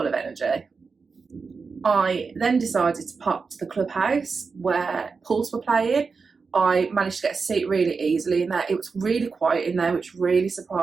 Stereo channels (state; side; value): quieter; left; 4.8 dB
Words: of energy. I then decided to pop to the clubhouse where Pulse were playing. I managed to get a seat really easily in there. It was really quiet in there, which really